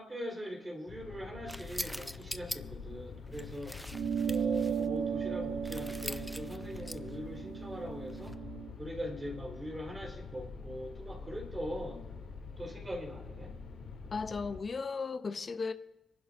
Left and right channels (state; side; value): normal; both; correlation 0.80